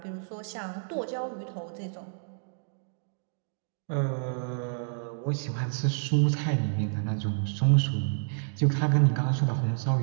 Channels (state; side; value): silent; left; digital silence